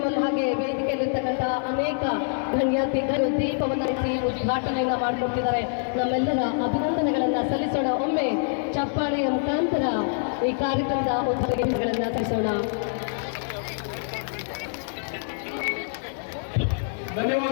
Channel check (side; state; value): right; silent; digital silence